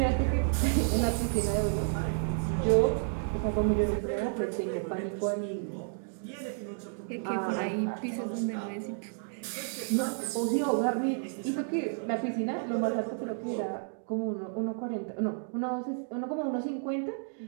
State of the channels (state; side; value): silent; left; digital silence